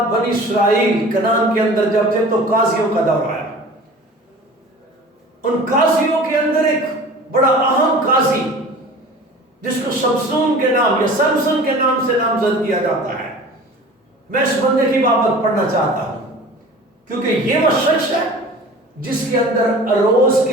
بنی اسرائیل کنعان کے اندر جب تھے تو قاضیوں کا دور آیا. ان قاضیوں کے اندر ایک بڑا اہم قاضی جس کو سمسون کے نام یا سمسن کے نام سے نامزد کیا جاتا ہے. میں اس بندے کی بابت پڑھنا چاہتا ہوں کیونکہ یہ وہ شخص ہے جس کے اندر اروز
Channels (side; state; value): both; normal; correlation 0.41